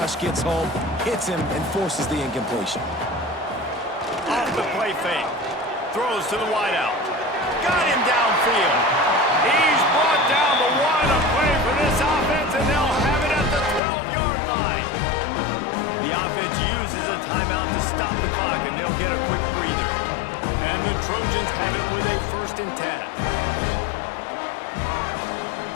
gets home, hits him, and forces the incompletion. Off the play fake. Throws to the wideout. Got him downfield. He's brought down, but what a play for this offense, and they'll have it at the 12-yard line. The offense uses a timeout to stop the clock, and they'll get a quick breather. And the Trojans have it with a 1st and 10.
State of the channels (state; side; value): drops out; right; at 13.8 s